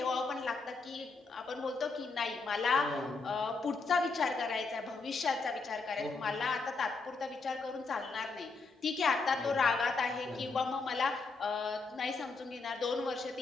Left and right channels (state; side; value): quieter; right; 4.1 dB